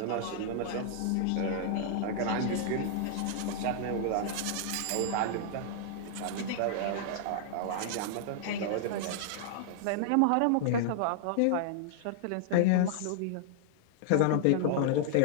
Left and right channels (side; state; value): both; different; correlation -0.01